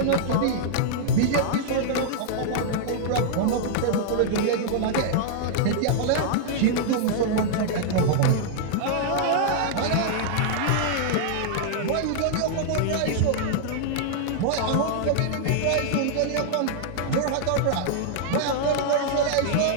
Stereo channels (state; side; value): different; both; correlation -0.01